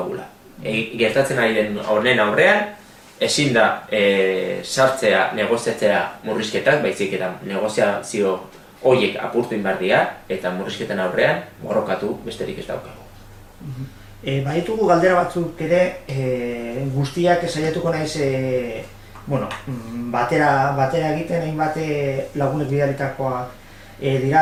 Gertatzen ari den honen aurrean, ezin da sartzea, negoziatzea murrizketak, baizik eta negoziazio horiek apurtu inbardia eta murrizketen aurrean borrokatu besterik ez daukagu. Baditugu galdera batzuk ere, guztiak saiatuko naiz batera egiten, hainbat lagunek bidalitakoa dira,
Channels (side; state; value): both; identical; correlation 1.00